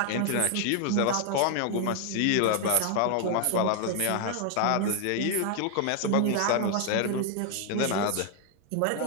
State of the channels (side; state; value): both; different; correlation 0.00